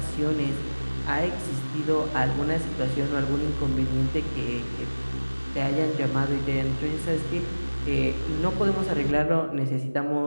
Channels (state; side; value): inverted; both; correlation -1.00